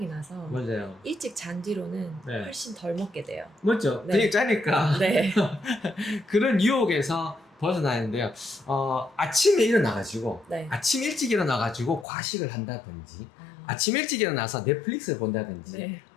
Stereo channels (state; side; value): drops out; right; at 12.1 s